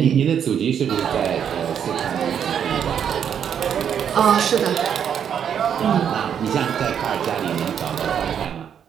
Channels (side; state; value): left; quieter; 8.4 dB